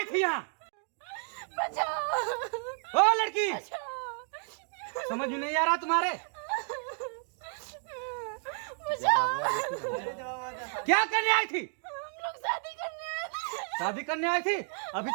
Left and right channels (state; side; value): silent; left; 56 dB below the other